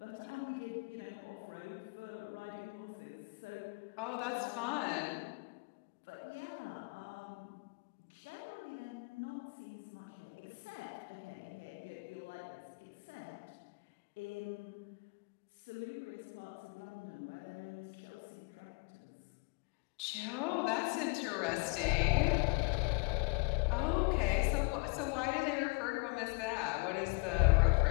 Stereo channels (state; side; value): quieter; right; 33.7 dB